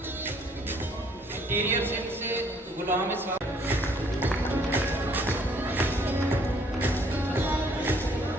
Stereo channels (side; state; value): both; normal; correlation 0.62